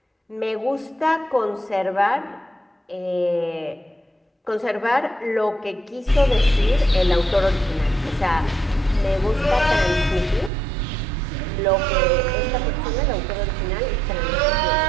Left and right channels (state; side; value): drops out; left; at 10.5 s